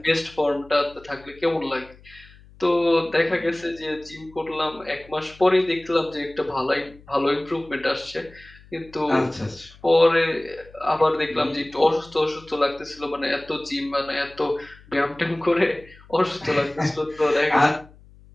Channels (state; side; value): noise; left; hum, 24 dB below the sound